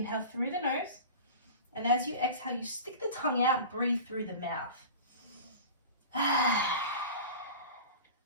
through the nose, and as you exhale, you stick the tongue out, breathe through the mouth.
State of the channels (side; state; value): both; inverted; correlation -0.35